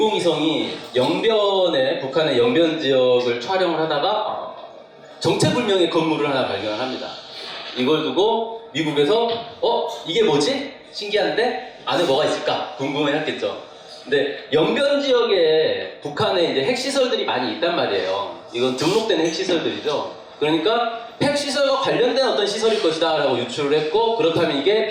영변에 북한의 영변 지역을 촬영을 하다가 정체불명의 건물을 하나 발견합니다. 이걸 두고 미국에서 이게 뭐지? 신기한데 안에 뭐가 있을까? 궁금해했겠죠. 근데 영변 지역에 북한에 이제 핵시설들이 많이 있단 말이에요. 이건 등록된 핵시설들이죠. 그러니까 핵시설과 관련된 어떤 시설일 것이다 라고 유추를 했고, 그렇다면 이게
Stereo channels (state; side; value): identical; both; correlation 1.00